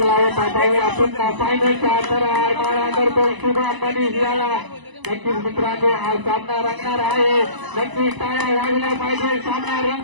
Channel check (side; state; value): left; late; 1.0 ms